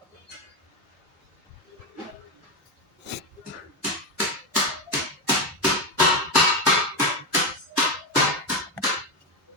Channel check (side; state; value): both; normal; correlation 0.10